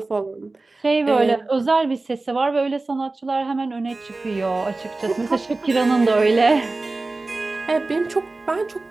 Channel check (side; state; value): left; quieter; 3.3 dB